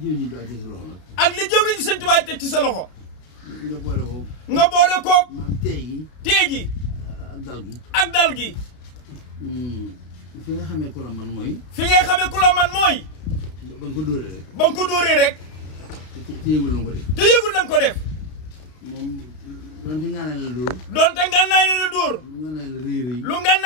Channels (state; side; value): late; right; 32 ms